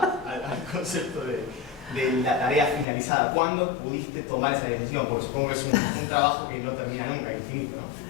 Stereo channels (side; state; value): right; drops out; at 2.9 s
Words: concepto de la tarea finalizada. ¿Cuándo pudiste tomar esa decisión? Porque supongo que es un trabajo que no termina nunca, infinito, ¿no?